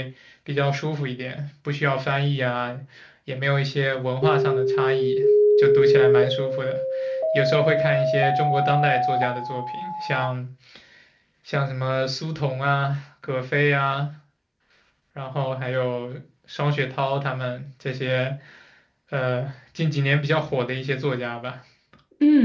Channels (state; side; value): identical; both; correlation 1.00